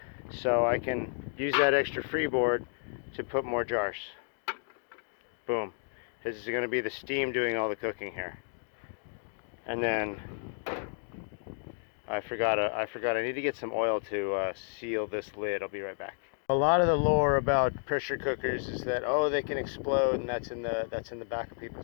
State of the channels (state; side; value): silent; right; digital silence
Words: So I can use that extra freeboard to put more jars. Boom. This is going to be the steam doing all the cooking here. And then I forgot I need to get some oil to seal this lid. I'll be right back. A lot of the lore about pressure cookers is that, oh, they can explode, and that's in the back of